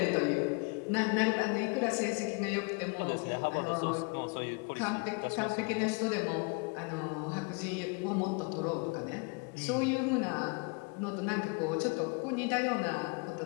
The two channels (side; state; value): right; quieter; 31.8 dB